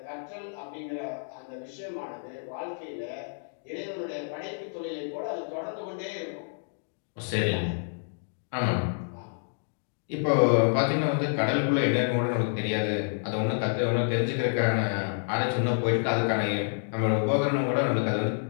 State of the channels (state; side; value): silent; right; digital silence